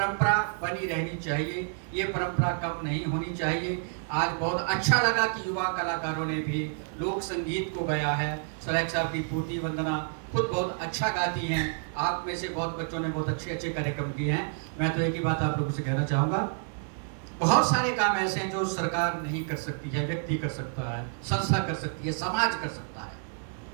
बनी रहनी चाहिए, ये परंपरा कम नहीं होनी चाहिए। आज बहुत अच्छा लगा कि युवा कलाकारों ने भी लोक संगीत को गाया है। सुरैख साहब की पूर्ति वंदना खुद बहुत अच्छा गाती हैं, आप में से बहुत बच्चों ने बहुत अच्छे अच्छे कार्यक्रम किए हैं। मैं तो एक ही बात आप लोगों से कहना चाहूँगा, बहुत सारे काम ऐसे हैं जो सरकार नहीं कर सकती है, व्यक्ति कर सकता है, संस्था कर सकती है, समाज कर सकता है।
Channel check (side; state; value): left; silent; digital silence